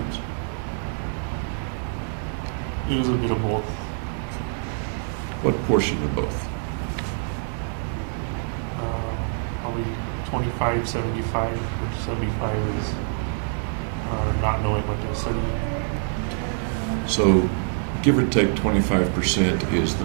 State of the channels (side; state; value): left; silent; 55 dB below the other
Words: It was a bit of both. What portion of both? Probably 25, 75, which 75 is not knowing what to study. So, give or take 25% is the